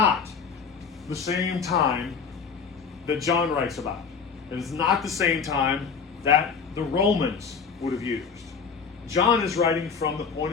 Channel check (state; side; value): quieter; right; 5.9 dB